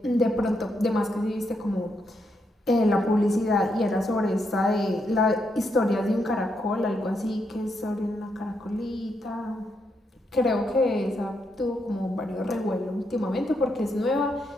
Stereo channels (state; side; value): normal; both; correlation 0.79